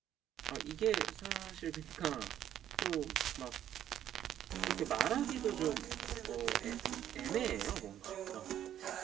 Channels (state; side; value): quieter; left; 10.9 dB